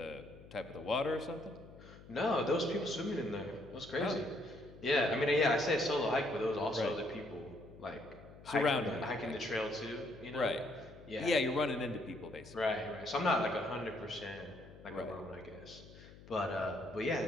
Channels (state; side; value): noise; left; hum, 19 dB below the sound